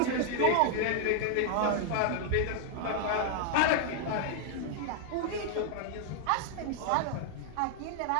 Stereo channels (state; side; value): different; both; correlation 0.00